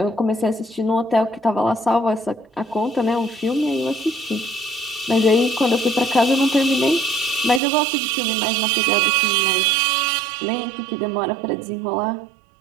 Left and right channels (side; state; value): left; drops out; at 7.6 s